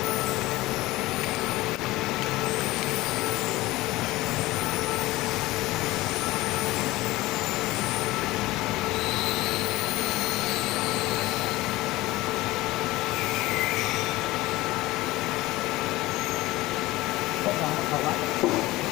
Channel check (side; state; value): right; quieter; 18.9 dB